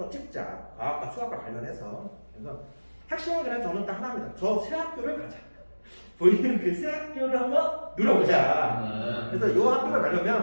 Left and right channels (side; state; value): both; inverted; correlation -1.00